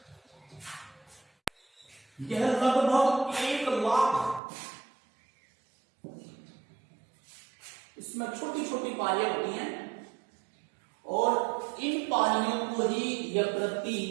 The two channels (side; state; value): left; drops out; at 4.4 s